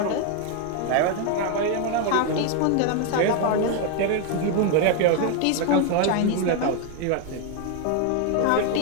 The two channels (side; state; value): both; different; correlation 0.01